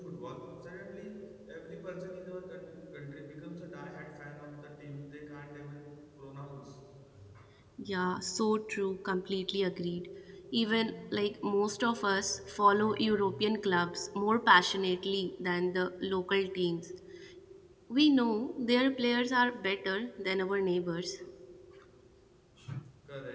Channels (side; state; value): both; identical; correlation 1.00